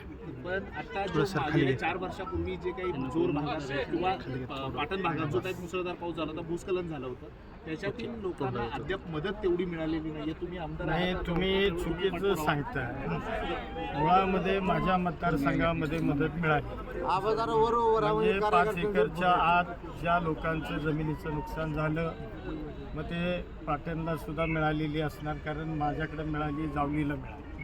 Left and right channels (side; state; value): both; identical; correlation 1.00